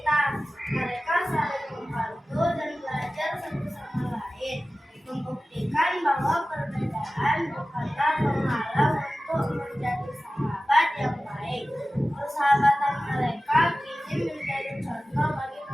Mereka saling membantu dan belajar satu sama lain, membuktikan bahwa perbedaan bukanlah penghalang untuk menjadi sahabat yang baik. Persahabatan mereka kini menjadi contoh bagi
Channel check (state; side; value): normal; both; correlation 0.96